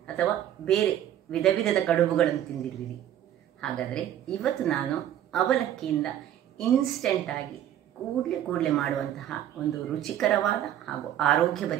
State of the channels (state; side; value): quieter; left; 11.3 dB